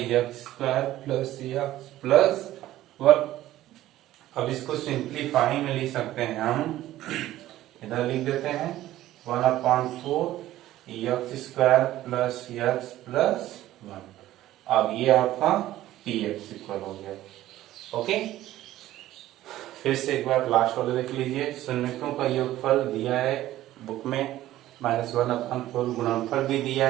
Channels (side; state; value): left; quieter; 14.5 dB